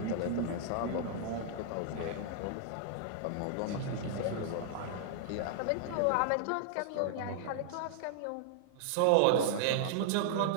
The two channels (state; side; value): different; both; correlation -0.01